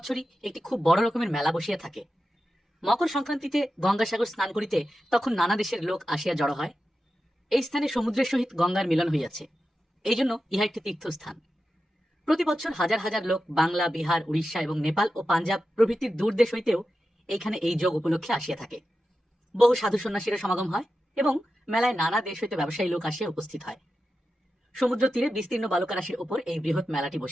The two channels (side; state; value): both; normal; correlation 0.91